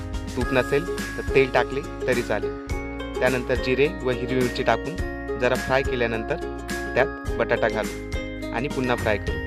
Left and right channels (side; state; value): both; identical; correlation 1.00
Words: तूप नसेल तर तेल टाकले तरी चालेल. त्यानंतर जिरे व हिरवी मिरची टाकून जरा फ्राय केल्यानंतर त्यात बटाटा घालू आणि पुन्हा फ्राय